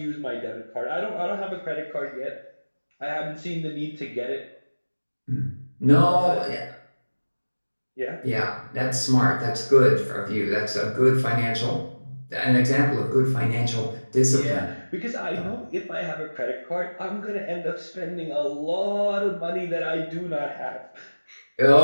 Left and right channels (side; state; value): both; inverted; correlation -1.00